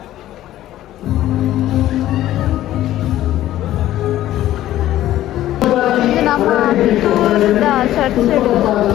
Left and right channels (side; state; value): right; quieter; 13.7 dB